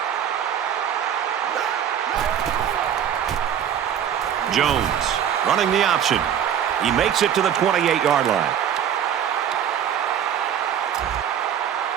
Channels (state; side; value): quieter; left; 9.2 dB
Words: Jones running the option. He makes it to the 28-yard line.